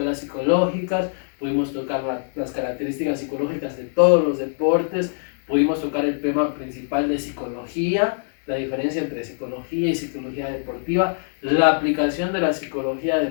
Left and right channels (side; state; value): right; silent; digital silence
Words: psicológicas, pudimos tocar las características psicológicas de todos los deportes, pudimos tocar el tema principal de psicología, la diferencia entre psicología y psicología deportiva, la aplicación de la psicología